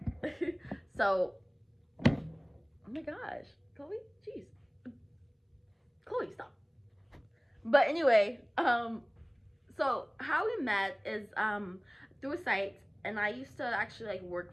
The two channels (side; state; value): both; identical; correlation 1.00